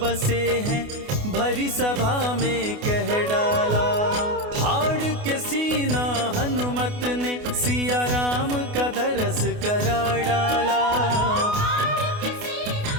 बसे हैं, भरी सभा में कह डाला। फाड़ के सीना हनुमत ने सिया राम का दरस करा डाला। फाड़ के सीना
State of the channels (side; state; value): left; late; 28 ms